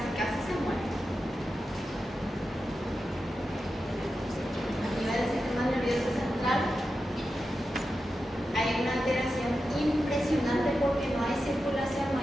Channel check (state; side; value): normal; both; correlation 0.90